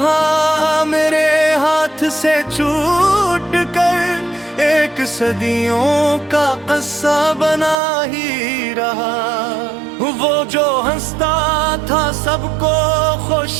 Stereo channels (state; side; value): drops out; left; at 7.8 s